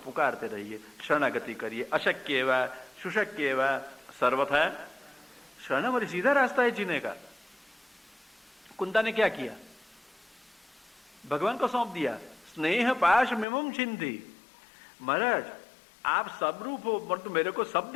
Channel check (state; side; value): drops out; right; at 13.5 s